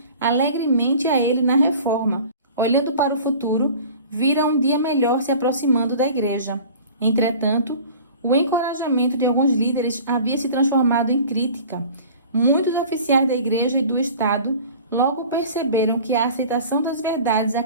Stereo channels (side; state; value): both; inverted; correlation -0.43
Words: alegremente a ele na reforma. Olhando para o futuro, vira um dia melhor se aproximando da igreja. Entretanto, o encorajamento de alguns líderes havia se transformado em crítica. Muitos oficiais da igreja e do Estado logo perceberam que a aceitação das verdades